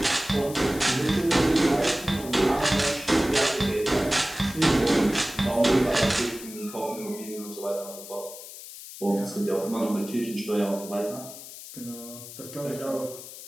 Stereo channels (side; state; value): left; noise; hiss, 14 dB below the sound